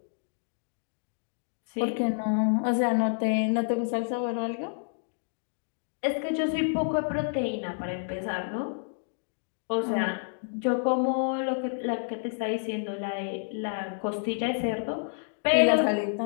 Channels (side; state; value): right; silent; digital silence